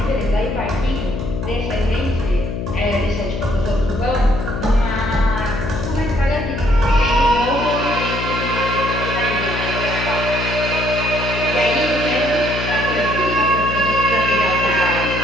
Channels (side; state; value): left; noise; hum, 4 dB below the sound